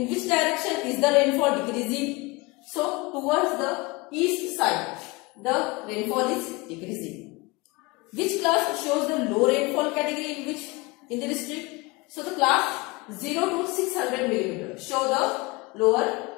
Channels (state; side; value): quieter; right; 24.6 dB